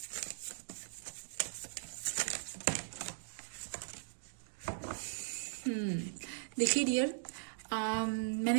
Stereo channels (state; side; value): silent; left; digital silence